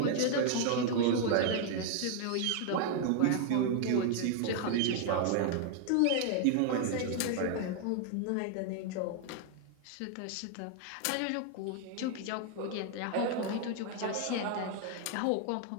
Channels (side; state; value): both; different; correlation 0.00